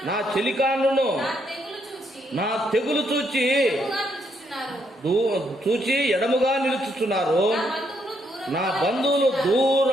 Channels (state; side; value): normal; both; correlation 0.75